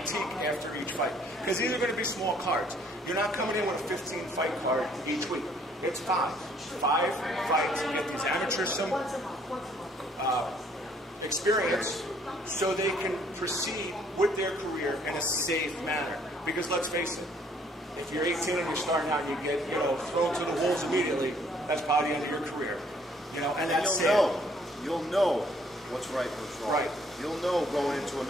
after each fight. Because these are going to be small cards. You're not coming in with a 15-fight card each week. It's 5. 5 fights. You get these amateurs some experience so they can proceed with their career in a safe manner. Because let's face it, if you're 18 and you're starting out and you get thrown to the wolves immediately, that's probably the end of your career. And that's you'll know what's right and what's wrong. Right. You'll know going into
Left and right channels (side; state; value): both; normal; correlation 0.63